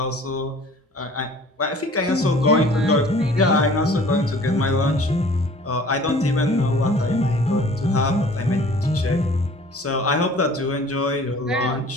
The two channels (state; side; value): normal; both; correlation 0.49